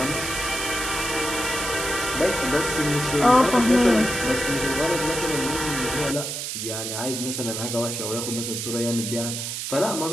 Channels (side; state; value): right; noise; hiss, 4 dB below the sound